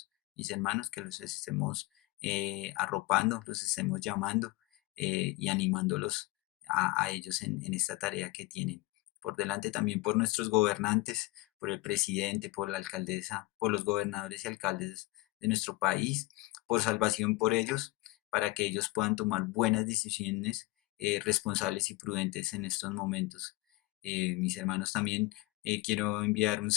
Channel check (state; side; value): quieter; right; 20.4 dB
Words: Mis hermanos, que los estemos arropando, los estemos llamando y animándolos a ellos en esta tarea que tienen por delante, también por nuestros gobernantes, por el presidente, por la alcaldesa, por los gobernadores y alcaldes de nuestro país, por salvación por ellos, para que ellos puedan tomar buenas decisiones responsables y prudentes en estos momentos. Mis hermanos, también quiero enviar un